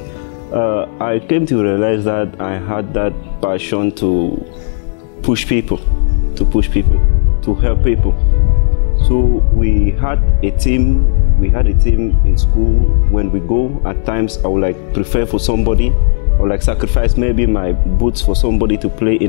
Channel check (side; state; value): right; silent; digital silence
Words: I came to realize that I had that passion to push people, to help people. So we had a team in school. When we go, at times I would like prefer for somebody, or like sacrifice maybe my boots for somebody to play